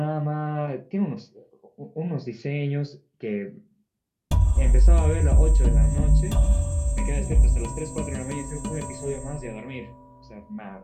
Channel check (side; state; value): both; identical; correlation 1.00